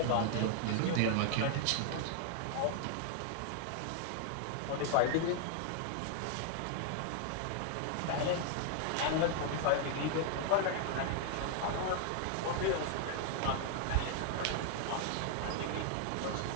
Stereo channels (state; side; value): different; both; correlation 0.00